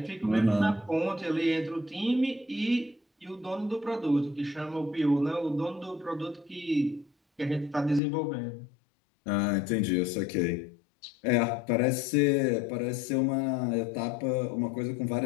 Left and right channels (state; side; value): drops out; right; at 8.0 s